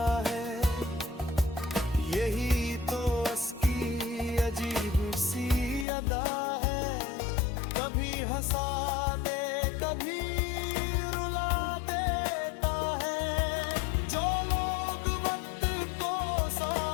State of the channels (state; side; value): drops out; right; at 5.9 s